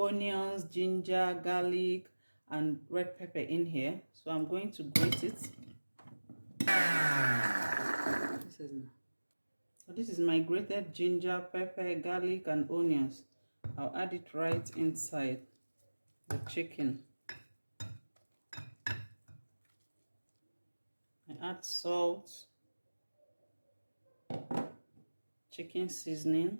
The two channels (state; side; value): inverted; both; correlation -1.00